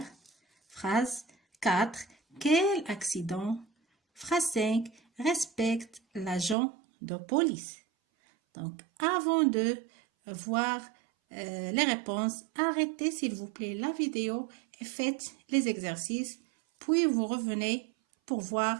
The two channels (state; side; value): drops out; left; at 6.6 s